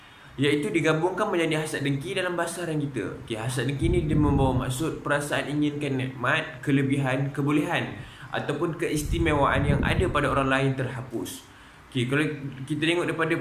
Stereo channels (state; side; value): identical; both; correlation 1.00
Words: iaitu digabungkan menjadi hasad dengki dalam bahasa Arab kita. Okey, hasad dengki ni dia membawa maksud perasaan inginkan nikmat, kelebihan, kebolehan ataupun keistimewaan yang ada pada orang lain terhapus. Okey, kalau kita tengok daripada